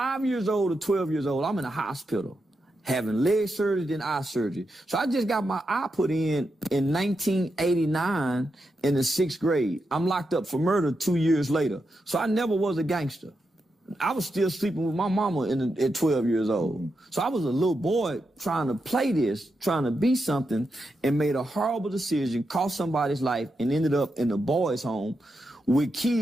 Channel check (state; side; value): normal; both; correlation 0.86